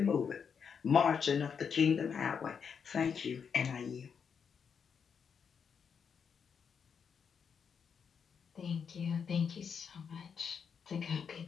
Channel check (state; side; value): quieter; right; 6.7 dB